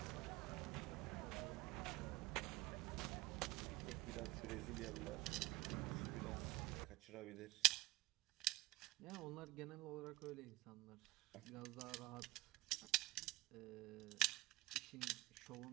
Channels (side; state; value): left; quieter; 20.2 dB